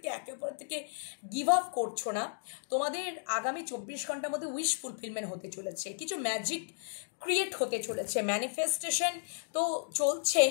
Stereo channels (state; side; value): silent; right; digital silence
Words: একে অপরের থেকে গিভ আপ করছো না। তোমাদের আগামী 24 ঘন্টার মধ্যে উইশ ফুলফিলমেন্ট হতে চলেছে, কিছু ম্যাজিক ক্রিয়েট হতে চলেছে। ম্যানিফেস্টেশন তো চলছেই,